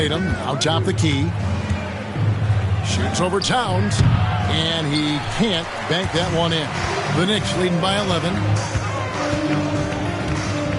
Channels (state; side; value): identical; both; correlation 1.00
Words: out top the key. Shoots over Towns. And he can't bank that one in. The Knicks leading by 11.